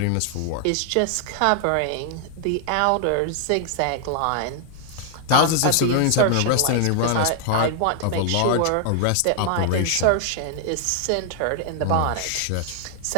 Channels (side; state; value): both; different; correlation 0.00